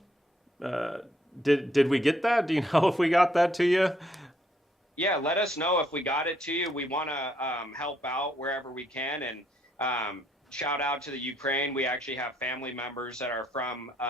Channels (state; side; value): normal; both; correlation 0.71